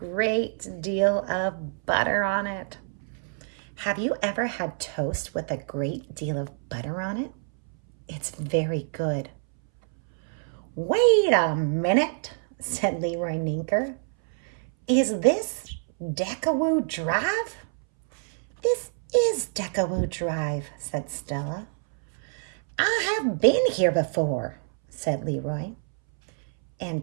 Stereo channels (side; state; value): left; silent; 60 dB below the other